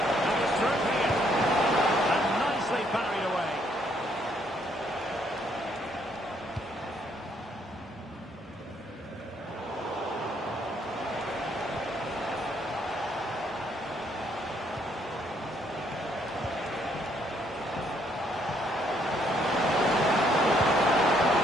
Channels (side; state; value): both; normal; correlation 0.69